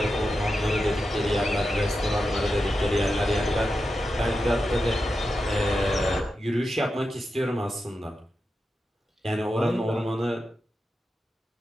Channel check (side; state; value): both; normal; correlation 0.89